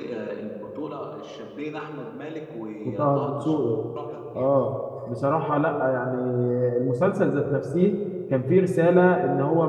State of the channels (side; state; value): both; identical; correlation 1.00